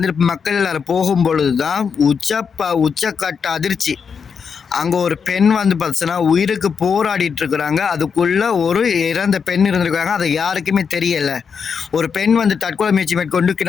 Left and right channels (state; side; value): quieter; right; 6.3 dB